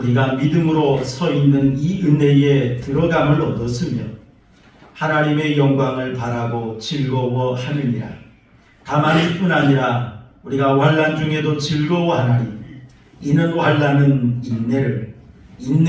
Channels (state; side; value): identical; both; correlation 1.00